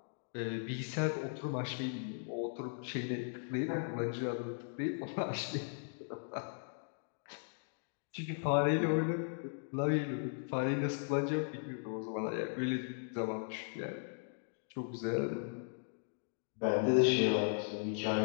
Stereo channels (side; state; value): right; silent; digital silence